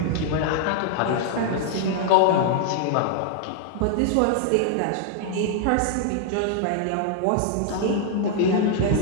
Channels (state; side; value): different; both; correlation 0.00